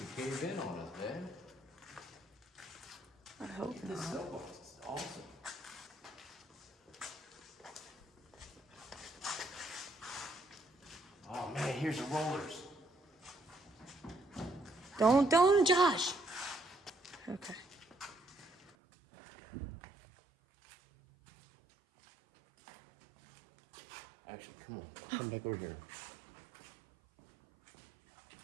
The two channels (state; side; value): drops out; left; at 18.7 s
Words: cave in on us, man. I hope This not. cell box is awesome. Oh man, here's the rollers. Don't, Josh. Okay. Actually, come on. Come back over here.